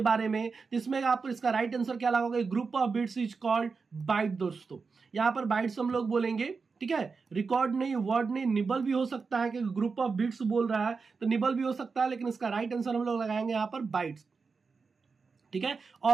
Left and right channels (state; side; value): quieter; left; 4.9 dB